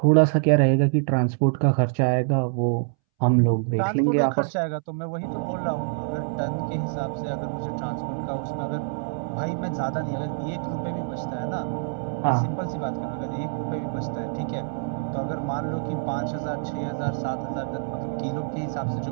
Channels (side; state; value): left; silent; 61 dB below the other